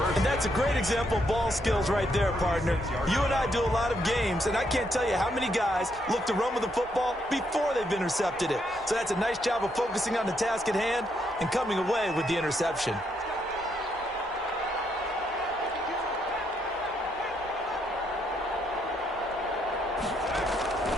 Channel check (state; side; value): normal; both; correlation 0.76